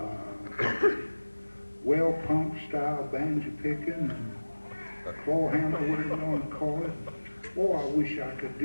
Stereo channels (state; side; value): inverted; both; correlation -1.00